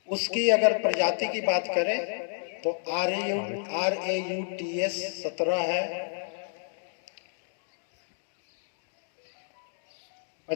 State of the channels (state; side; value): silent; right; digital silence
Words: उसकी अगर प्रजाति की बात करें तो RAUTS 17 है,